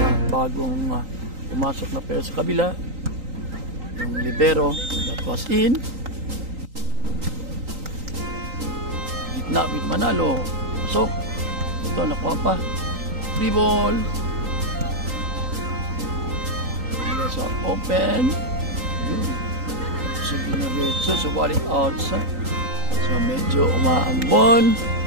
bagong pumasok na pair sa kabila. Yung libero that was in. Gitna with Manalo. Pasok. Ito, nakuha pa. Free ball. Let's open. Yun. So, dinaretso. So, balik outside. So, medyo umaambon.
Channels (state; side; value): late; left; 3.9 ms